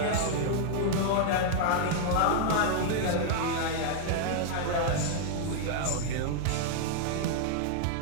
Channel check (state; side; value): different; both; correlation -0.01